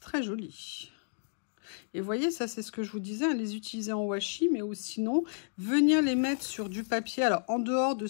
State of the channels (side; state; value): right; silent; digital silence